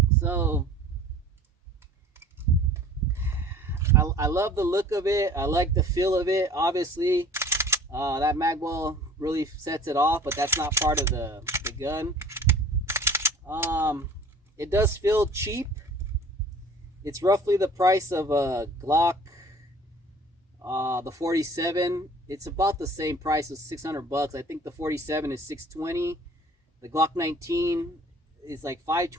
So I love the look of it. I like the feel of it. Obviously, that mag well really sets it off, but that's not part of the gun. It does feel cheap. It's roughly the price of a Glock, the 47. It's about the same price as $600. I think the 47 is $620. The Glock 19 is like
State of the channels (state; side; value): normal; both; correlation 0.48